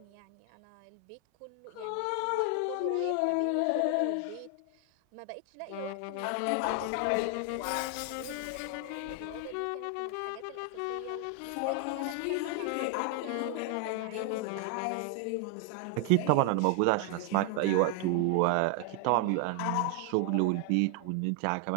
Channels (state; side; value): different; both; correlation 0.00